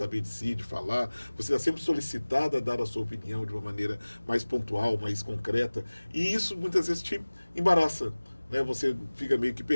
de si, de falar, você está sempre solicitado a dar a sua opinião de uma maneira mais pontual, mais concreta, e isso muitas vezes te embaraça, né? Você fica meio que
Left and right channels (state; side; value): inverted; both; correlation -1.00